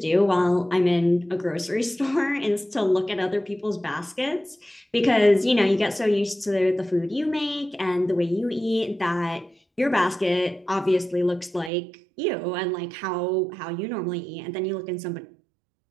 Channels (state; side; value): drops out; left; at 11.7 s